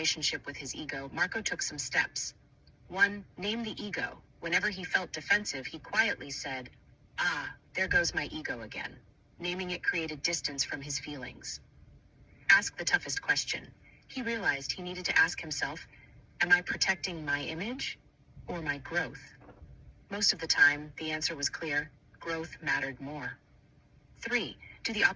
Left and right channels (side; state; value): both; identical; correlation 1.00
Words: with his ego, Marco took some steps. 1. Name the ego. Whenever he felt defensive, he quietly said, "Ah, there goes my ego again." Naming it created distance from his feelings. Ask the toughest question. He realized he needed to ask himself, am I protecting my image or my growth? Most of the time, the answer was clear: growth mattered more. 3. Do the